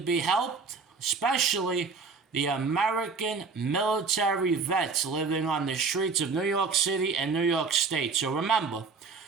helped, especially the American military vets living on the streets of New York City and New York State. So remember,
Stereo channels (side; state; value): left; quieter; 4.7 dB